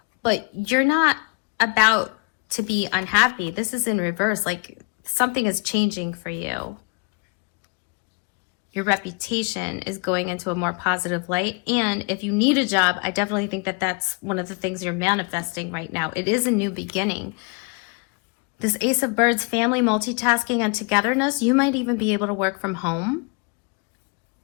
but you're not about to be unhappy. This is in reverse. Like, something is changing for you. Your reputation is going into a more positive light. And if you need a job, I definitely think that that's one of the things you're manifesting right now. It is a new beginning. This Ace of Birds, family, multitasking, and togetherness, you might even be able to work from home.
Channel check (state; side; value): quieter; right; 31.7 dB